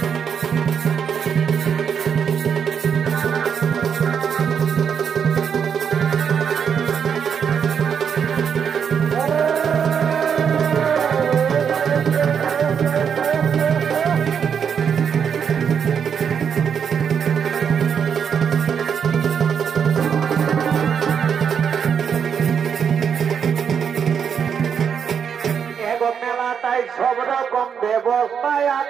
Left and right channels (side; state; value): left; quieter; 7.3 dB